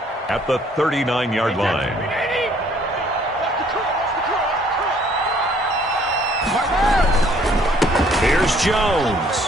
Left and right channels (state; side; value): normal; both; correlation 0.61